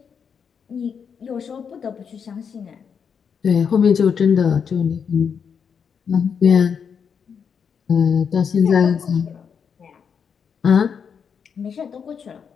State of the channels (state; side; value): quieter; right; 6.8 dB